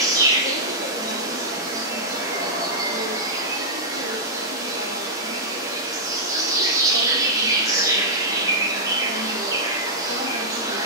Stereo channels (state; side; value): normal; both; correlation -0.09